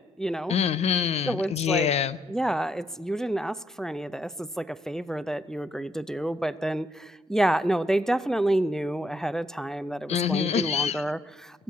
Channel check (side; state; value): both; normal; correlation 0.74